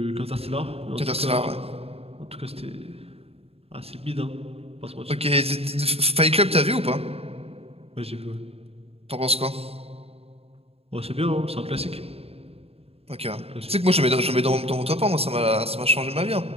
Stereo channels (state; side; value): late; left; 0.29 ms